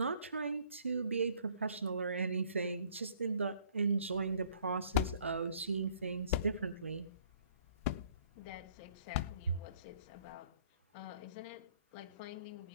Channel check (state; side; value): inverted; both; correlation -0.59